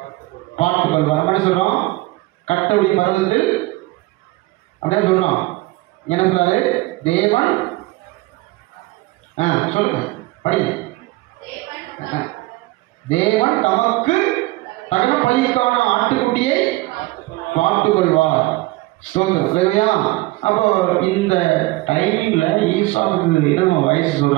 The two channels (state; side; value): quieter; left; 20.2 dB